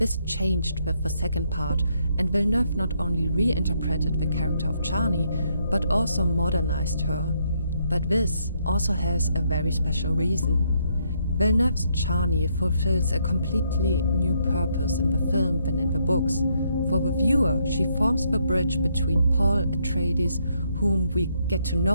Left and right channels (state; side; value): inverted; both; correlation -0.74